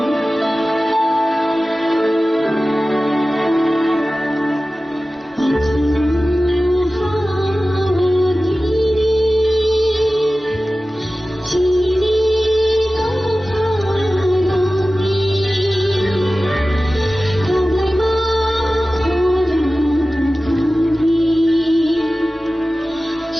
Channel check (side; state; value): both; normal; correlation 0.96